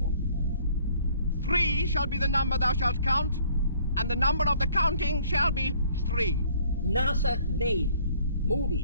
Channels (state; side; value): inverted; both; correlation -0.59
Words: 3 shall be the number thou shalt count, and the number of the counting shall be 3. NASA made